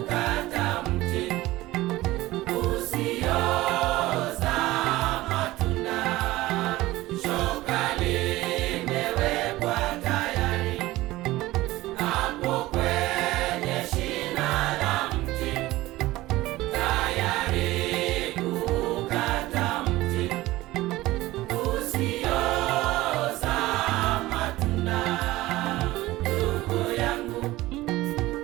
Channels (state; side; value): quieter; left; 17.9 dB